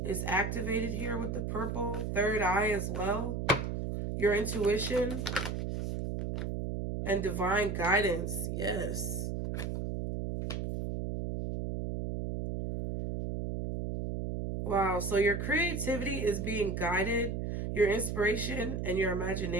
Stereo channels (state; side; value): noise; right; hum, 2 dB below the sound